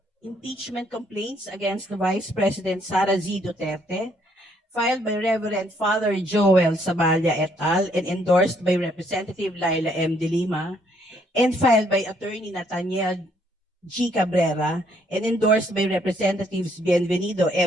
Impeachment complaints against the Vice President Sara Z. Duterte, filed by Reverend Father Joel Saballa et al. And endorsed by Representative Laila M. De Lima, and filed by Attorney Nathaniel G. Cabrera, and endorsed by Representatives Bienvenido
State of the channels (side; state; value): both; normal; correlation 0.68